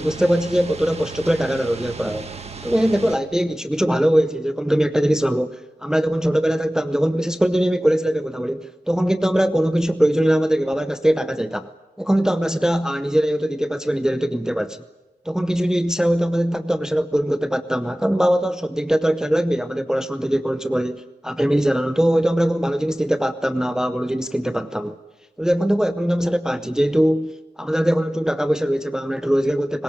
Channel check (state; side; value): normal; both; correlation 0.97